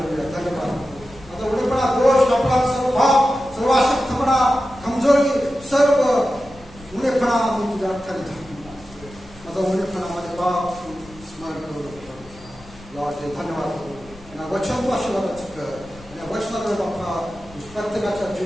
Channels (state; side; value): noise; left; rumble, 20 dB below the sound